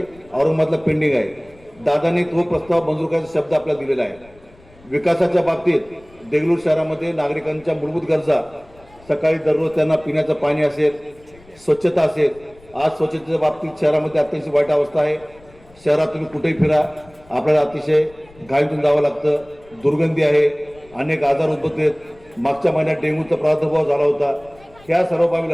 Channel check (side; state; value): left; noise; rumble, 27 dB below the sound